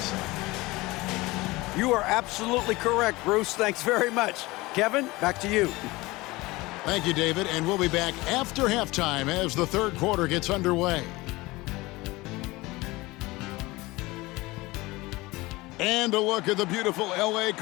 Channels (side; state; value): right; quieter; 21.2 dB